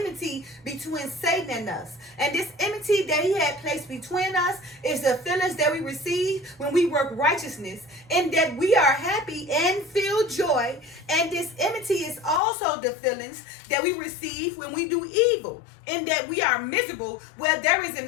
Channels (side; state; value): right; drops out; at 12.4 s